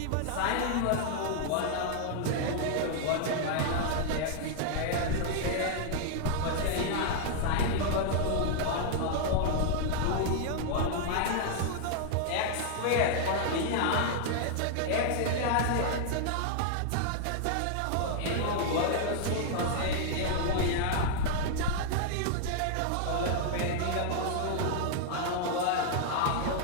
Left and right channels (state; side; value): different; both; correlation -0.01